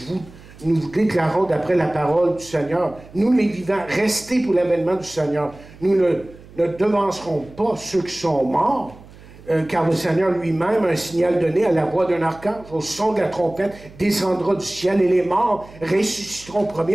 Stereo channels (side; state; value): right; noise; hum, 21 dB below the sound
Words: nous vous déclarons d'après la parole du Seigneur. Nous les vivants, restez pour l'avènement du Seigneur. Nous ne devancerons pas ceux qui sont morts, car le Seigneur lui-même, un signal donné à la voix d'un archange, au son de la trompette, descendra du ciel, et les morts ressusciteront